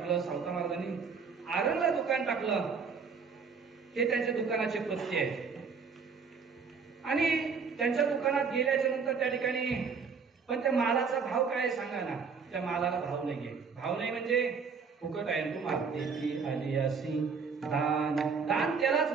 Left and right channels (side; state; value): left; quieter; 5.5 dB